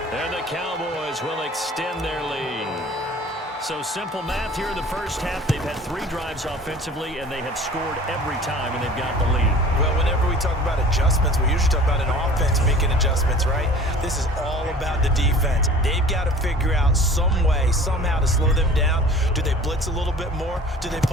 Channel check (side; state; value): both; normal; correlation 0.45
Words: And the Cowboys will extend their lead. So simple math here in the first half. They've had 3 drives offensively, and they have scored every time, and they've got the lead. Well, whenever we talk about adjustments, we usually talk about an offense making adjustments, right? This is all about the defense. They've got to figure out some way, somehow to slow them down. Do they blitz a little bit more? Do they